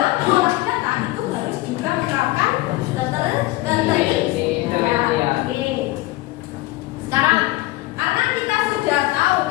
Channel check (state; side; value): quieter; right; 18.8 dB